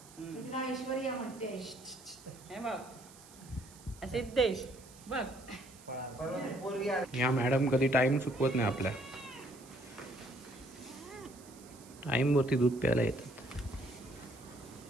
तिला ऐश्वर्या म्हणते. हे बघ सिद्धेश बघ. या मॅडम कधी टाइम चुकवत नाही आपल्या. टाइम वरती दूध प्यायला येतात.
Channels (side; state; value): right; noise; hiss, 21 dB below the sound